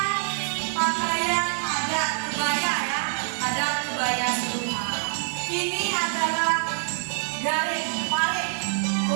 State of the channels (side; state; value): left; silent; 61 dB below the other